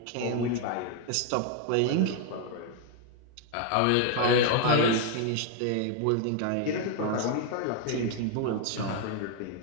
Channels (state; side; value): different; both; correlation 0.01